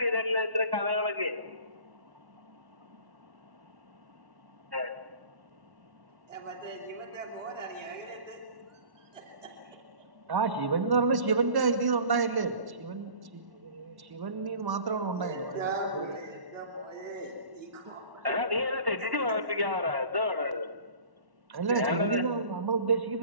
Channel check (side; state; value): left; late; 1.1 ms